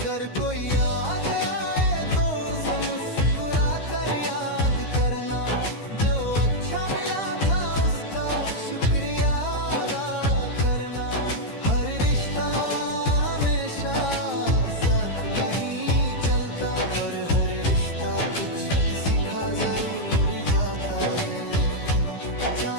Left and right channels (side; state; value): right; late; 13 ms